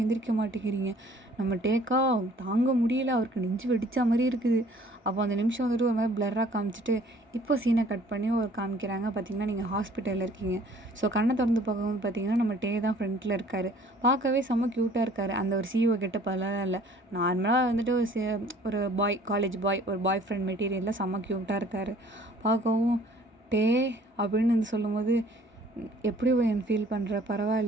எந்திரிக்க மாட்டேங்கிறீங்க. நம்ம டேக்கா தாங்க முடியல, அவருக்கு நெஞ்சு வெடிச்சா மாதிரி இருக்குது. அப்போ அந்த நிமிஷம் வந்துட்டு ஒரு மாதிரி பிளராக காமிச்சிட்டு இப்போ சீனை கட் பண்ணி ஒரு காமிக்கிறாங்க. பார்த்திங்கன்னா நீங்கள் ஹாஸ்பிட்டலில் இருக்கீங்க. ஸோ கண்ணை திறந்து பார்க்கும்போது பார்த்திங்கன்னா நம்ம டே தான் ஃப்ரண்ட்டில் இருக்கார். பார்க்கவே செம்ம க்யூட்டாக இருக்கார். அந்த ஒரு சிஓ கெட்டப்பெல்லாம் இல்லை, நார்மலாக வந்துட்டு ஒரு காலேஜ் பாய், ஒரு பாய் ஃப்ரெண்ட் மெட்டீரியலில் செம்ம க்யூட்டாக இருக்கார். பார்க்கவும் டே அப்படின்னு வந்து சொல்லும்போது எப்படி என் ஃபீல் பண்ணுற,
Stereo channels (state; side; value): normal; both; correlation 0.55